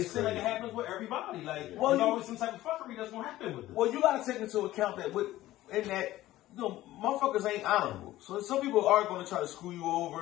seems like it happens with everybody. Like there's always some type of fuckery that's gonna happen with it. Well, you gotta take into account that motherfuckers ain't honorable. So some people are gonna try to screw you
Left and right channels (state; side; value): quieter; right; 15.5 dB